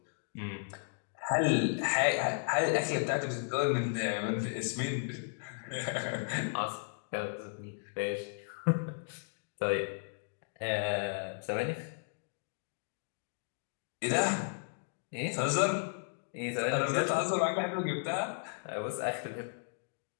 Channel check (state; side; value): silent; right; digital silence